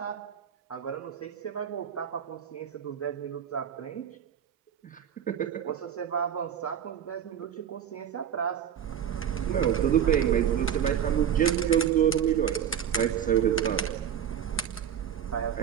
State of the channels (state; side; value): quieter; left; 8.9 dB